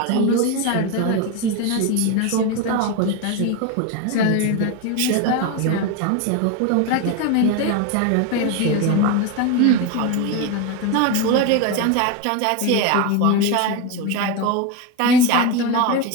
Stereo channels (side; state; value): both; different; correlation 0.04